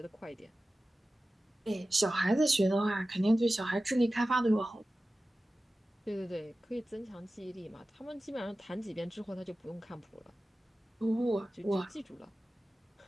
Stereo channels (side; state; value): both; normal; correlation 0.95